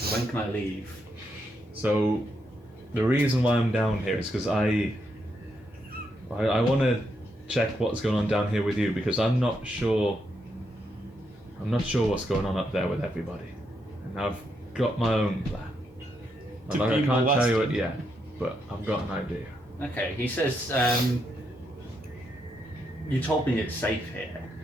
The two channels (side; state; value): both; normal; correlation 0.80